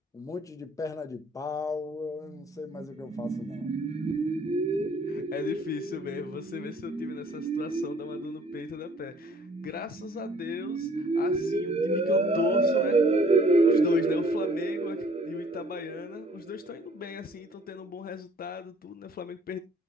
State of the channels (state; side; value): normal; both; correlation 0.57